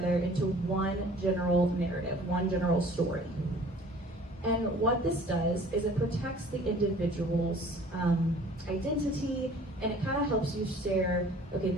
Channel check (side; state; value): both; normal; correlation 0.50